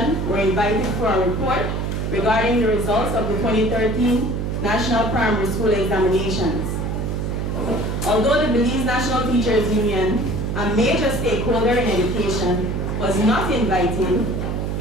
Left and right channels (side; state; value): right; noise; hum, 1 dB below the sound